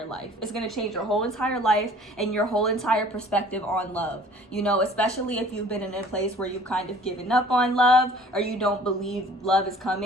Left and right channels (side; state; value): both; normal; correlation 0.51